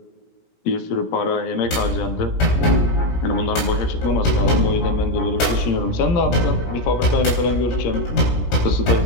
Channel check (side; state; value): right; late; 17 ms